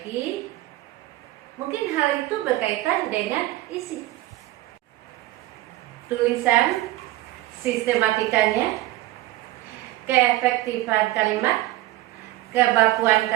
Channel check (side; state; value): left; quieter; 17.0 dB